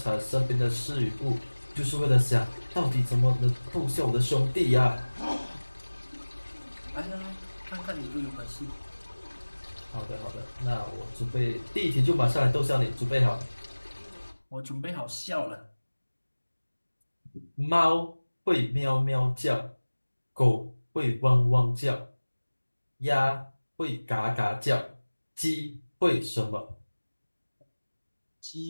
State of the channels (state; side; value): inverted; both; correlation -1.00